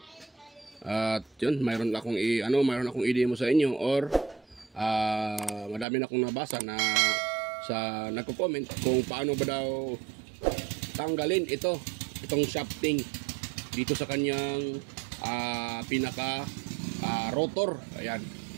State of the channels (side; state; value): left; drops out; at 5.9 s